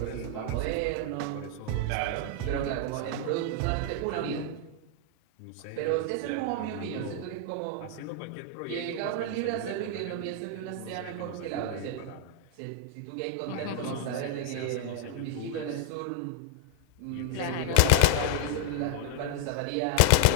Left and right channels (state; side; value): different; both; correlation 0.00